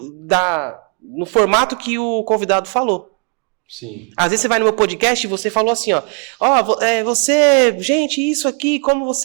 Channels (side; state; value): left; quieter; 39.1 dB